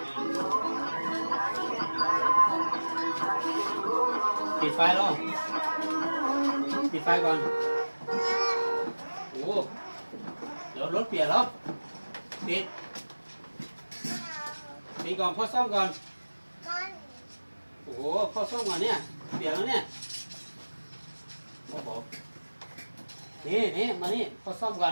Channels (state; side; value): inverted; both; correlation -1.00